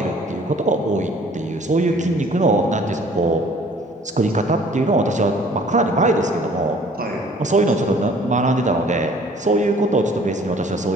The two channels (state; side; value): normal; both; correlation 0.54